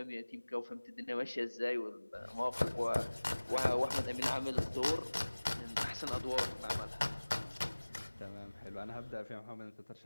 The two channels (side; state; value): both; inverted; correlation -1.00